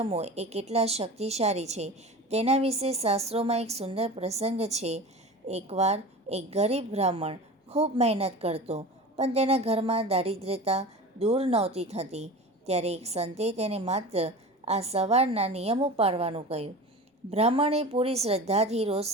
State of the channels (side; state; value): both; normal; correlation 0.33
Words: એ કેટલા શક્તિશાળી છે તેના વિશે શાસ્ત્રોમાં એક સુંદર પ્રસંગ છે. એકવાર એક ગરીબ બ્રાહ્મણ ખૂબ મહેનત કરતો પણ તેના ઘરમાં દારિદ્ર્યતા દૂર નહોતી થતી. ત્યારે એક સંતે તેને માત્ર આ સવારના નિયમો પાળવાનું કહ્યું. બ્રાહ્મણે પૂરી શ્રદ્ધાથી રોજ